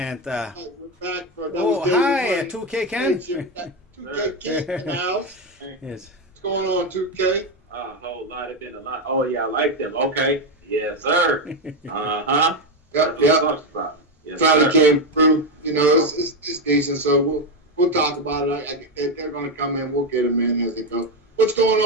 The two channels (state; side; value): normal; both; correlation 0.09